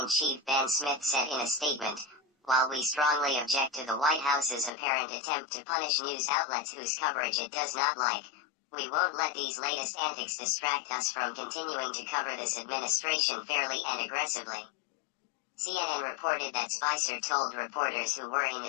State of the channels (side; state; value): right; drops out; at 4.7 s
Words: Ben Smith said in a statement, "While we strongly object to the White House's apparent attempt to punish news outlets whose coverage it does not like, we won't let these latest antics distract us from continuing to cover this administration fairly and aggressively." CNN reported that Spicer told reporters who were in